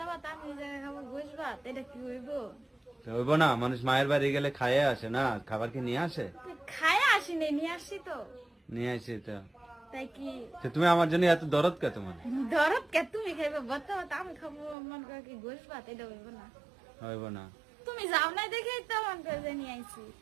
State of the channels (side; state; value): left; drops out; at 14.8 s